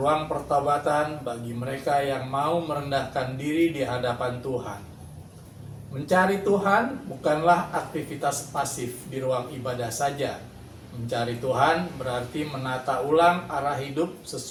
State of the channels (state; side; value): identical; both; correlation 1.00